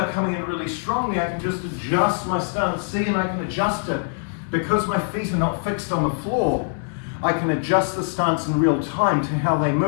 coming in really strongly, I can just adjust my stance. See, and I can adjust it. Because my feet are not fixed on the floor, I can adjust the stance in real time to how they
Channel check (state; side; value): silent; right; digital silence